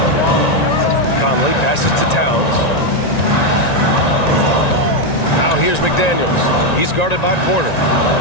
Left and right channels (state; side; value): late; right; 1.9 ms